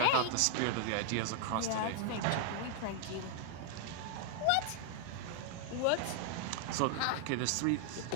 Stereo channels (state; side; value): different; both; correlation 0.00